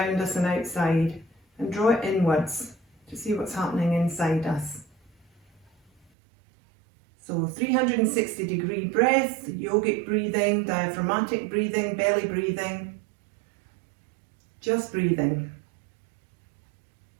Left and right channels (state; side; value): drops out; left; at 6.1 s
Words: us and outside, and draw it inwards to see what's happening inside us. So 360-degree breath, yogic breathing, diaphragmatic breathing, belly breathing, just breathing.